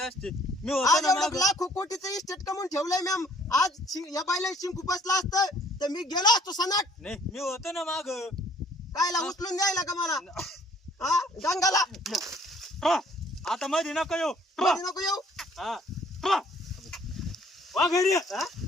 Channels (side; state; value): both; normal; correlation 0.59